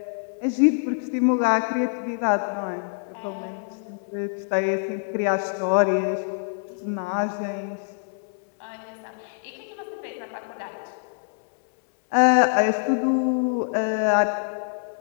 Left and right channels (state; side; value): silent; right; 62 dB below the other